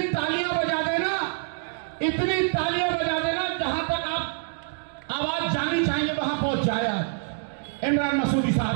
तालियां बजा देना, इतनी तालियां बजा देना, जहां तक आप आवाज जानी चाहिए वहां पहुंच जाए। आज इमरान मसूदी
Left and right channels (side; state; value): left; silent; digital silence